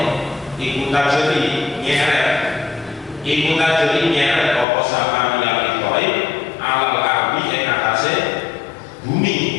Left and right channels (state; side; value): drops out; right; at 4.7 s